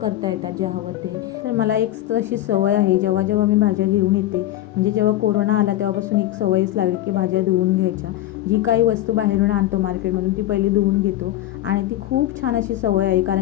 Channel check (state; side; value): quieter; right; 14.1 dB